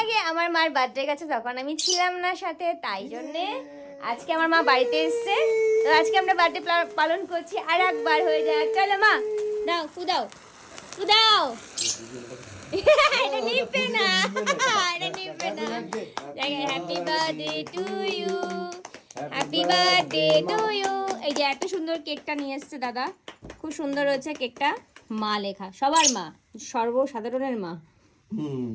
আগে আমার মার বার্থডে গেছে, তখন আমি ছিলাম না সাথে, তাই জন্যে আজকে আমার মা বাড়িতে এসছে, তো আজকে আমরা বার্থডে পালন করছি। আর একবার হয়ে যায়, চলো মা দাও দাও দাও। এটা নিবে না, এটা নিবে না। Happy birthday to you, happy birthday to you. এই যে এত সুন্দর কেকটা নিয়ে এসছে দাদা, খুব সুন্দর হয়েছে কেকটা। মা লেখা, সবার মা, সর্বসাধারণের মা,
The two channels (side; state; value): both; identical; correlation 1.00